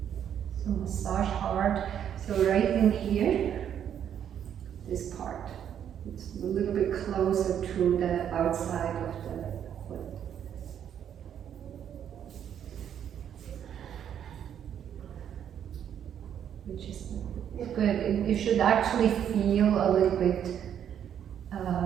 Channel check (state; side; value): quieter; left; 9.3 dB